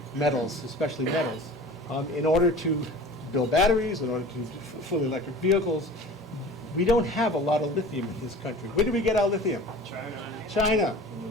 metals, especially metals, in order to build batteries, in order to do fully electric vehicles. We don't have a lot of lithium in this country. Where do we get our lithium? China.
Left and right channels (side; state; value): both; normal; correlation 0.40